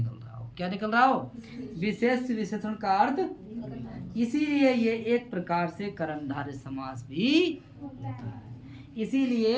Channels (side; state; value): both; identical; correlation 1.00